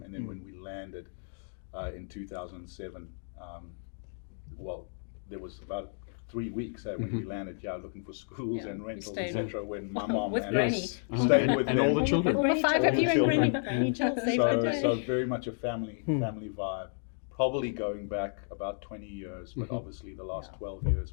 And then when we landed in 2007, there was about 3 weeks when we landed, looking for schools and rentals, etc. When my mom with and Granny. us stayed with and them. all the children. All the 5 of you and Granny. Granny Jill saved the day. So very much a family vibe. Probably going back about 20 years, but obviously the last 12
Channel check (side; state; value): right; silent; digital silence